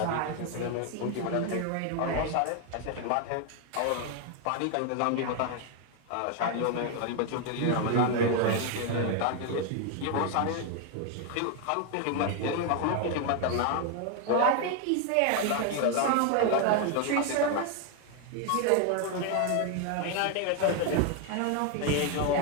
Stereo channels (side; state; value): both; different; correlation 0.01